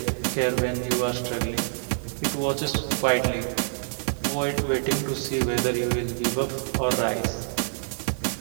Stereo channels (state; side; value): silent; left; digital silence